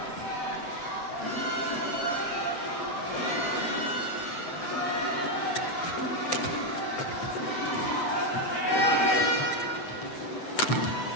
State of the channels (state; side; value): late; right; 7.9 ms